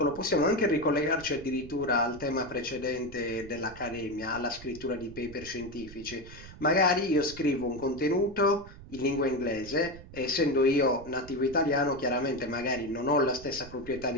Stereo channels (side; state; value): right; noise; rumble, 16 dB below the sound